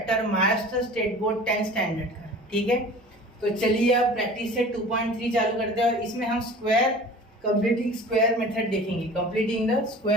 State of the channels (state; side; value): normal; both; correlation 0.42